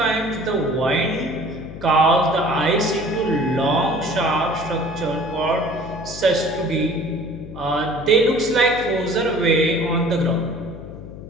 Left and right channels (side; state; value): left; noise; hum, 13 dB below the sound